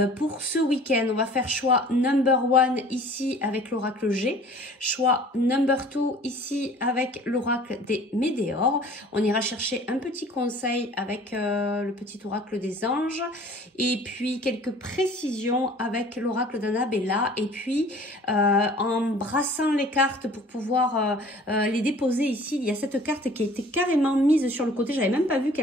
pour ce week-end? On va faire choix number 1 ici avec l'oracle G, choix number 2 ici avec l'oracle des Médéors. On ira chercher un petit conseil avec le petit oracle des anges et puis quelques précisions avec l'oracle d'Annabella et puis en brassant les cartes pour pouvoir les déposer ici, il y a cette carte qui a été carrément mise sur le côté, j'avais même pas vu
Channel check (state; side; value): normal; both; correlation 0.48